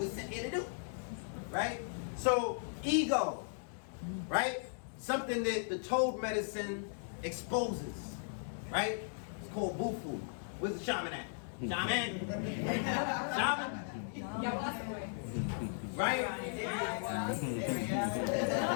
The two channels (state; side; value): silent; right; digital silence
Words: sent here to do. Right? So, ego. Right? Something that the toad medicine exposes. Right? It's called bufu. Where's the shaman at? Shaman? Shaman? Right?